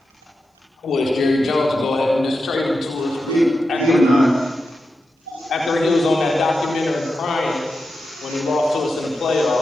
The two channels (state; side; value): normal; both; correlation 0.89